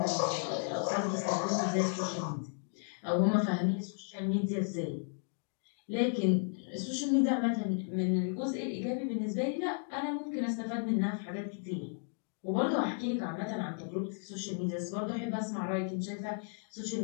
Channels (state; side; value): silent; right; 55 dB below the other